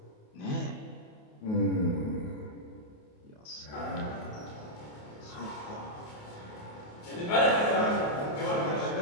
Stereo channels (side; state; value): right; late; 28 ms